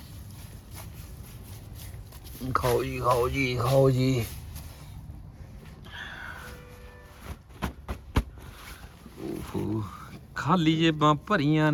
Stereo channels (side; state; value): both; identical; correlation 1.00